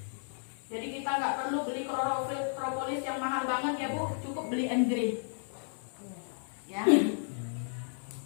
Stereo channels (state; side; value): silent; right; digital silence